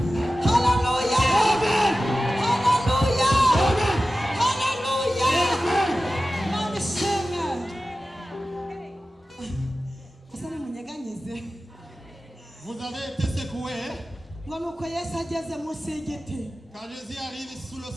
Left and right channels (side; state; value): both; normal; correlation 0.95